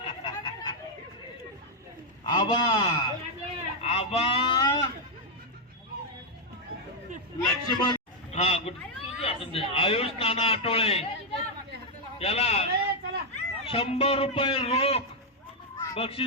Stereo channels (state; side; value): normal; both; correlation -0.01